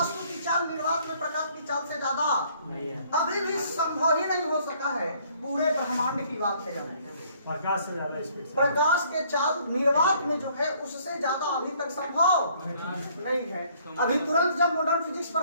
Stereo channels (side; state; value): both; inverted; correlation -0.62